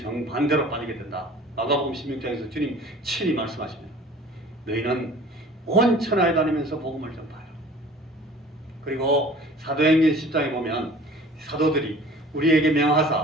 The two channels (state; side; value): normal; both; correlation 0.46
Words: 정반대로 빠지게 된다. 마가복음 16장에서 주님 친히 말씀하십니다. 너희는 온 천하에 다니면서 복음을 전파해라. 그리고 사도행전 10장에 보면 사도들이 우리에게